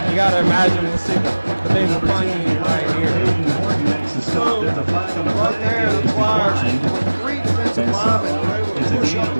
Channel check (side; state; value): both; inverted; correlation -1.00